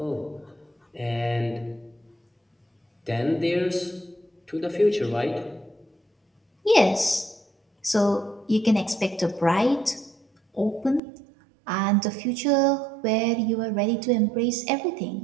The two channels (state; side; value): drops out; left; at 11.0 s